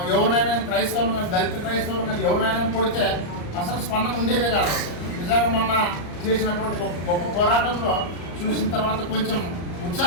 ఎవరినైనా క్రైస్తవులు కానీ దళిత క్రైస్తవులు కానీ ఎవరినైనా కొడితే అసలు స్పందన ఉండేదే కాదు. నిజంగా మొన్న చేసినటువంటి గొప్ప పోరాటంలో చూసిన తర్వాత కొంచెం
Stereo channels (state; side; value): late; right; 34 ms